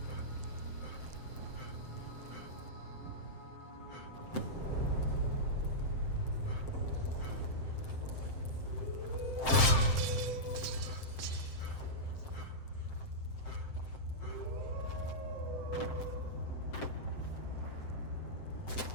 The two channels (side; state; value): right; late; 7.7 ms